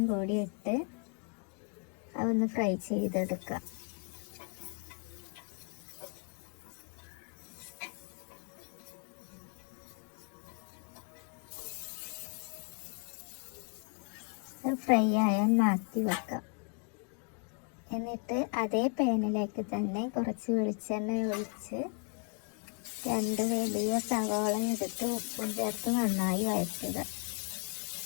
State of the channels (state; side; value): quieter; right; 38.7 dB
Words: കൂടി ഇട്ട് അതൊന്ന് ഫ്രൈ ചെയ്തെടുക്കാം. ഫ്രൈ ആയാൽ മാറ്റി വെക്കാം. എന്നിട്ട് അതേ പാനിലേക്ക് തന്നെ കുറച്ച് വെളിച്ചെണ്ണ ഒഴിച്ച് 2 വലിയ സവാള എടുത്ത് ഉപ്പും ചേർത്ത് നന്നായി വഴറ്റുക.